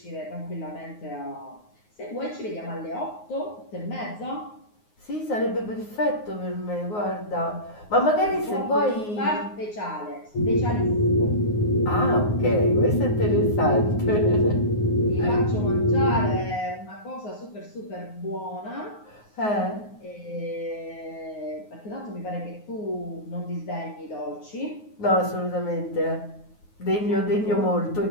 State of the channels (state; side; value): late; right; 9.5 ms